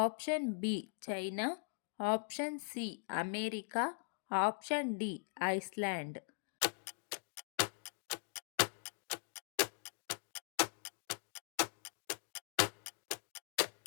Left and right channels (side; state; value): right; silent; digital silence